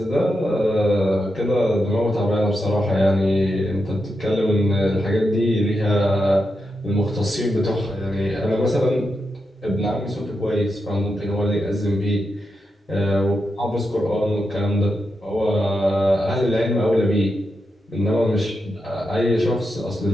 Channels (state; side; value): normal; both; correlation 0.86